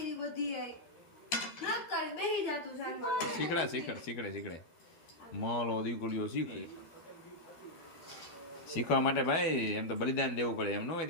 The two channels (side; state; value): right; late; 12 ms